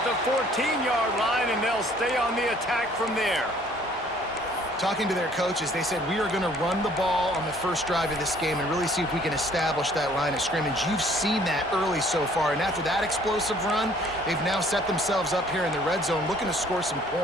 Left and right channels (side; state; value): both; normal; correlation 0.58